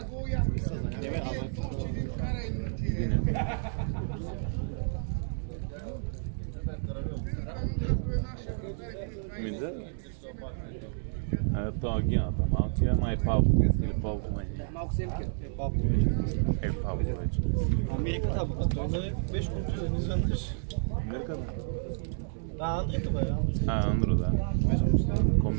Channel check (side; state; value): left; silent; digital silence